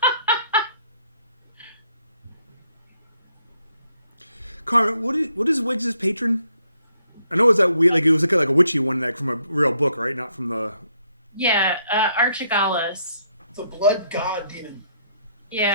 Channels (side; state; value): both; inverted; correlation -0.72